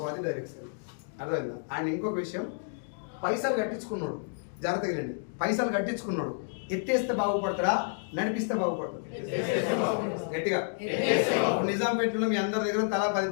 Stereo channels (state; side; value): silent; right; digital silence